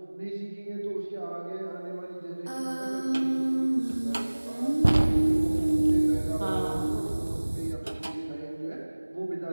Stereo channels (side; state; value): both; inverted; correlation -1.00